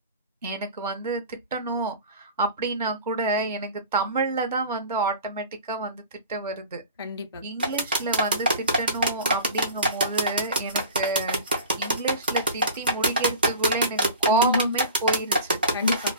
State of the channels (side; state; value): both; inverted; correlation -0.38